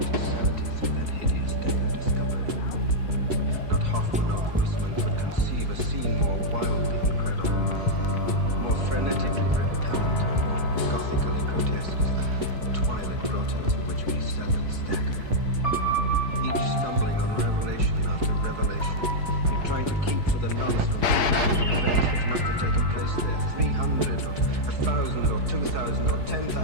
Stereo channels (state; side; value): late; left; 4.7 ms